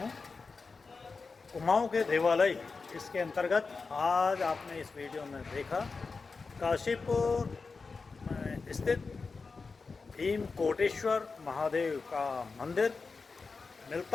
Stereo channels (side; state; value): right; quieter; 4.4 dB